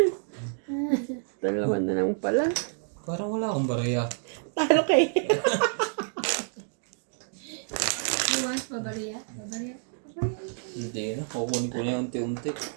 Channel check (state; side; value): silent; left; 59 dB below the other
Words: Dalawa na lang pala. Parang wala akong barya. Talo kayo. You want pabariya? Pabariya? Pabariya. Hindi na. Kukunin ko na yung unti-unti.